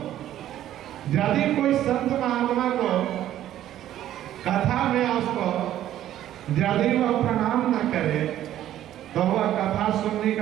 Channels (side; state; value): left; quieter; 12.3 dB